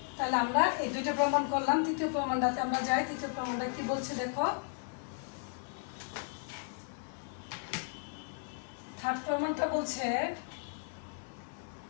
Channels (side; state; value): right; silent; 55 dB below the other